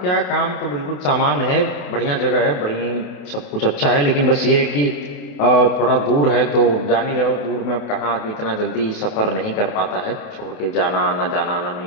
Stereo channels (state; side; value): late; right; 28 ms